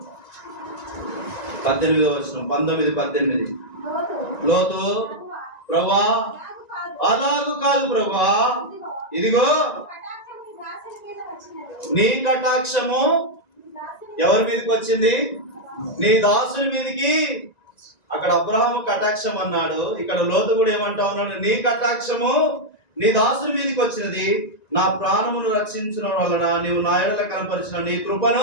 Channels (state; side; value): late; right; 1.9 ms